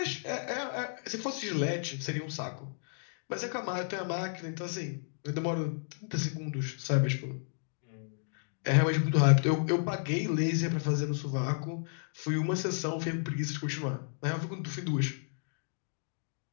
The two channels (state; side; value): silent; right; digital silence